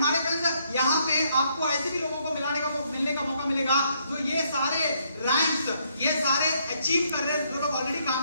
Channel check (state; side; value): inverted; both; correlation -0.72